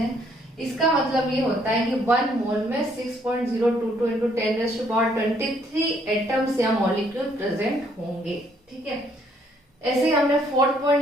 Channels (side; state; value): both; normal; correlation 0.67